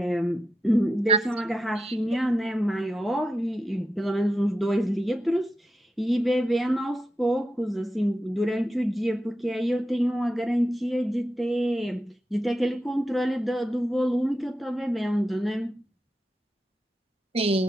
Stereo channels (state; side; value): normal; both; correlation 0.88